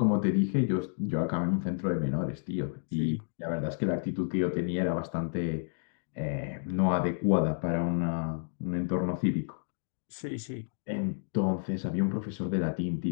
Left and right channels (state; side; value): silent; right; digital silence